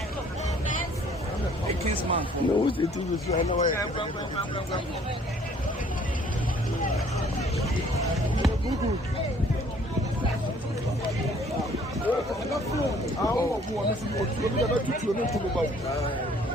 a kinsman. No, it is right away.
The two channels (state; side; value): normal; both; correlation 0.58